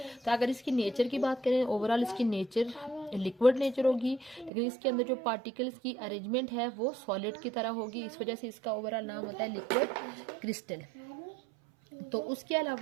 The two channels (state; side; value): drops out; left; at 4.5 s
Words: तो अगर इसकी नेचर की बात करें ओवरऑल इसकी नेचर लिक्विड नेचर होगी, लेकिन इसके अंदर जो पार्टिकल्स की अरेंजमेंट है वो सॉलिड की तरह होगी, इस वजह से इसका ओवरऑल नाम होता है लिक्विड क्रिस्टल। तो उसके